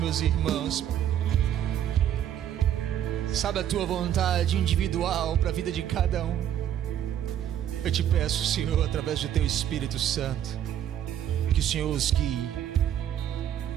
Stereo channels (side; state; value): left; quieter; 10.5 dB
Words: irmãos. Sabe a tua vontade individual para a vida de cada um. Eu te peço, Senhor, através do teu Espírito Santo, que o Senhor os guie